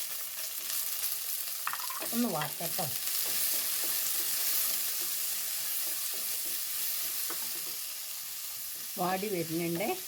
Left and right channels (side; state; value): both; identical; correlation 1.00